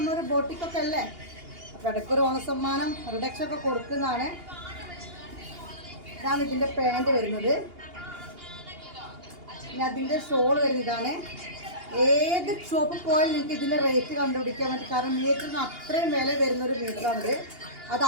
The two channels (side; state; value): left; late; 2.8 ms